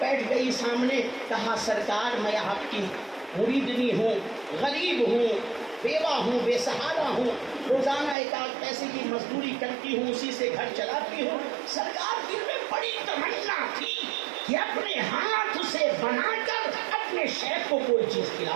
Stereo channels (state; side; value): drops out; left; at 8.2 s